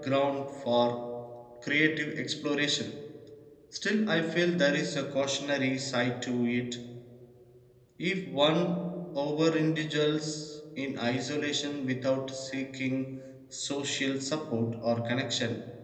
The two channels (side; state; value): both; identical; correlation 1.00